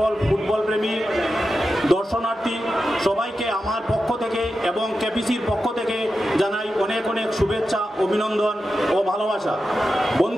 ফুটবল প্রেমী দর্শনার্থী সবাইকে আমার পক্ষ থেকে এবং কেপিসির পক্ষ থেকে জানাই অনেক অনেক শুভেচ্ছা, অভিনন্দন ও ভালোবাসা।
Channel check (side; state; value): both; normal; correlation 0.90